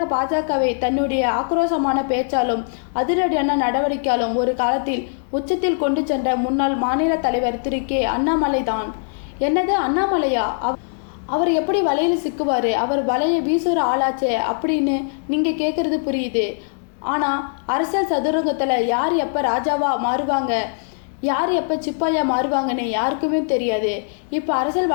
பாஜகவை தன்னுடைய ஆக்ரோஷமான பேச்சாலும் அதிரடியான நடவடிக்கையாலும் ஒரு காலத்தில் உச்சத்தில் கொண்டு சென்ற முன்னாள் மாநில தலைவர் திரு கே. அண்ணாமலை தான். என்னது அண்ணாமலையா? அவர் எப்படி வலையில் சிக்குவார்? அவர் வலையை வீசுகிற ஆளாச்சே அப்படின்னு நீங்கள் கேட்குறது புரியுது. ஆனால் அரசியல் சதுரங்கத்தில் யார் எப்போ ராஜாவா மாறுவாங்க, யார் எப்போ சிப்பாயா மாறுவாங்கன்னு யாருக்குமே தெரியாது. இப்போ அரசியல்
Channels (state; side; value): silent; right; digital silence